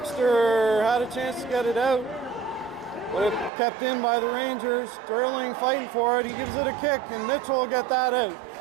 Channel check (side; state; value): left; drops out; at 3.5 s